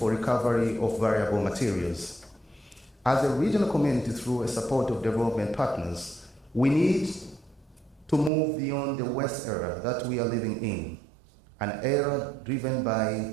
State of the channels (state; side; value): drops out; left; at 8.3 s